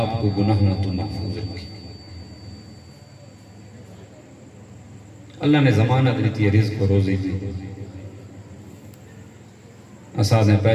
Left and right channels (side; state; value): both; identical; correlation 1.00